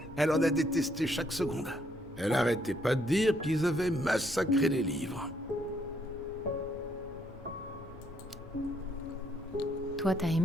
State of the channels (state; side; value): normal; both; correlation 0.71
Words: Elle en a détesté chaque seconde. Elle arrêtait pas de dire qu'ils avaient massacré les livres. Toi, t'as